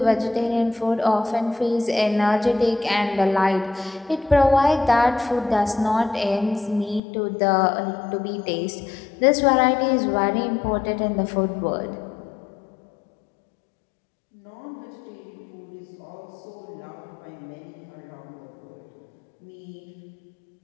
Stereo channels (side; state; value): right; drops out; at 7.0 s